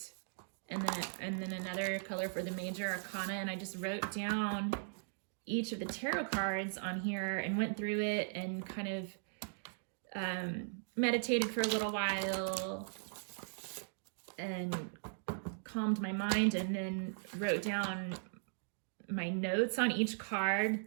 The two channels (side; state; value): left; silent; digital silence